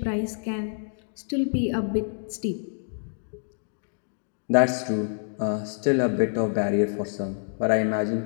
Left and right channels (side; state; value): right; silent; digital silence